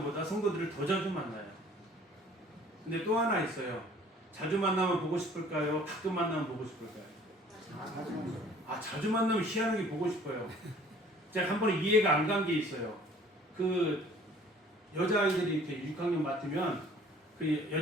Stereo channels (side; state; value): both; normal; correlation 0.53